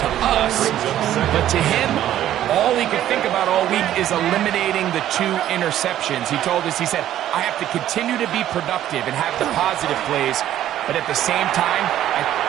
to us. But to him, all he could think about all week is eliminating the 2 interceptions. He told us, he said, I have to continue to be productive and have the positive plays. But at the same time,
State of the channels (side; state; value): left; quieter; 12.1 dB